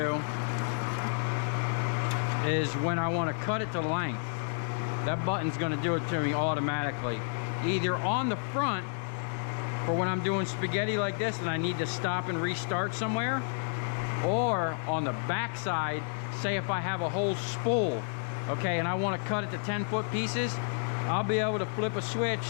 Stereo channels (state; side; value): silent; right; digital silence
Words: is when I want to cut it to length, that button's going to do it to me automatically. Either on the front, for when I'm doing spaghetti like this and I need to stop and restart somewhere, or on the back side, say if I have a whole spool, okay, and I want to cut it to 10-foot pieces, I'll be able to flip a switch